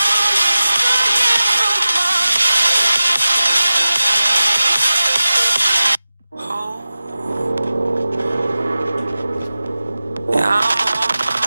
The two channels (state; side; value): inverted; both; correlation -0.94